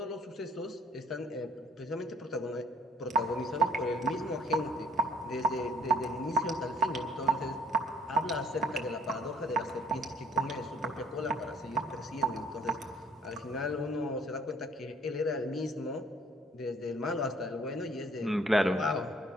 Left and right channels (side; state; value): both; normal; correlation 0.60